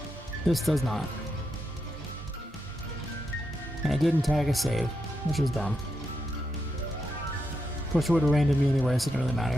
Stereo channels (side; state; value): both; normal; correlation 0.84